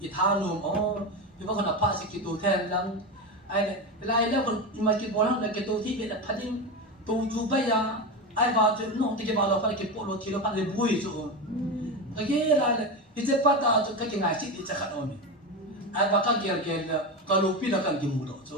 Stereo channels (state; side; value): normal; both; correlation 0.18